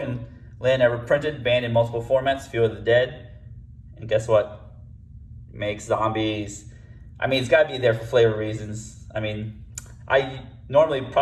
land ever printed, banned in multiple formats, Field of the Dead. And guess what? Makes zombies. It's got to be there for flavor reasons. I normally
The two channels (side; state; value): both; identical; correlation 1.00